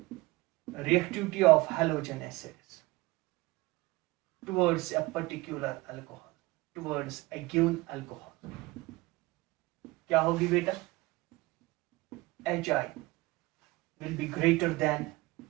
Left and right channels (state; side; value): quieter; left; 21.7 dB